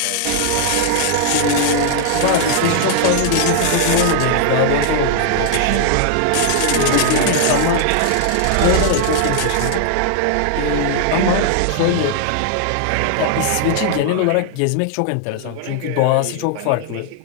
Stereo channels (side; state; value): both; different; correlation -0.01